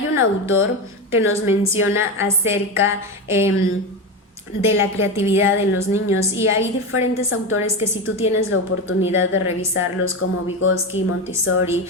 un autor que nos menciona acerca de la creatividad en los niños, y hay diferentes autores que si tú tienes la oportunidad de revisarlos, como Vygotsky, Montessori,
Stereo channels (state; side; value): normal; both; correlation 0.18